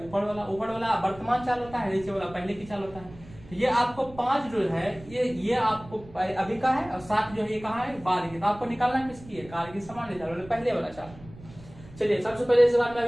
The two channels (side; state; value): right; noise; rumble, 19 dB below the sound